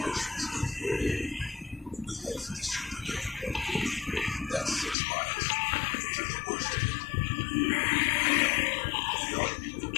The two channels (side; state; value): right; drops out; at 5.0 s